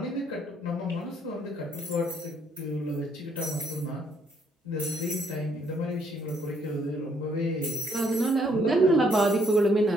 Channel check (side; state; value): both; normal; correlation 0.68